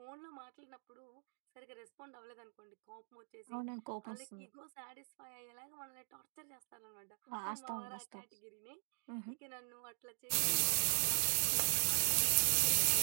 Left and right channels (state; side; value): silent; left; digital silence